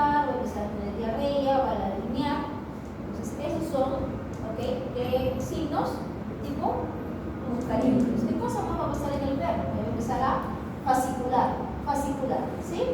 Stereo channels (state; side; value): identical; both; correlation 1.00